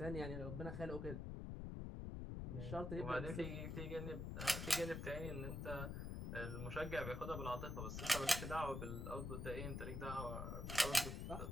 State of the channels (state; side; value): noise; left; rumble, 4 dB below the sound